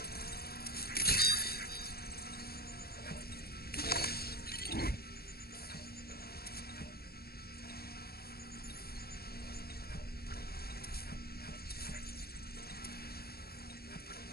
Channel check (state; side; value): late; right; 0.45 ms